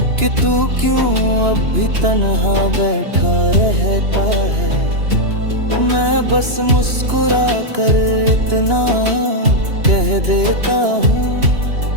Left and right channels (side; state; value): left; late; 2.9 ms